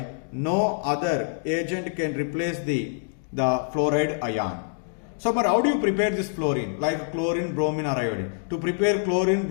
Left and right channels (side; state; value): right; silent; digital silence